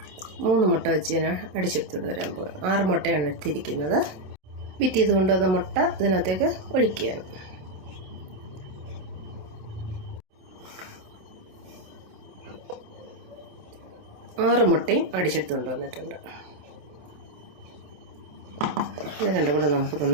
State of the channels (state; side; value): late; left; 27 ms